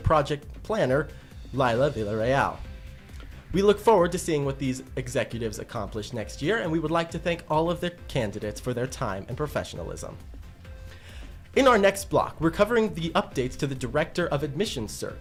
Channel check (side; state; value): both; identical; correlation 1.00